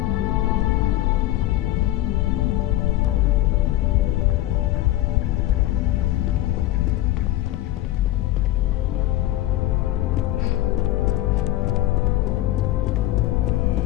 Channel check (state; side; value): quieter; right; 15.2 dB